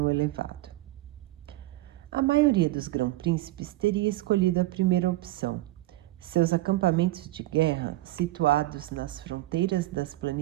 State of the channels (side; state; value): left; quieter; 17.7 dB